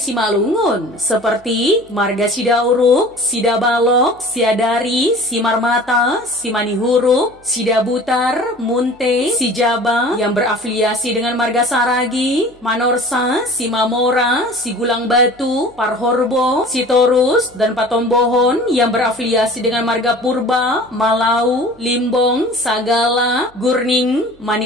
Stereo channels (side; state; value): right; noise; hum, 29 dB below the sound